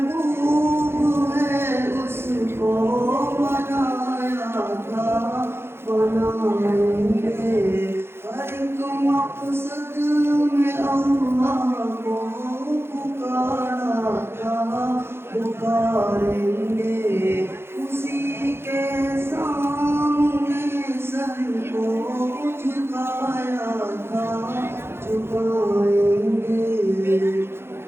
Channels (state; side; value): late; left; 0.12 ms